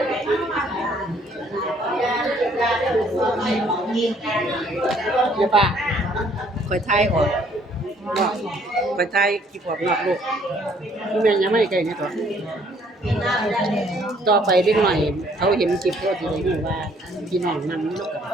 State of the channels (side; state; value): both; normal; correlation 0.63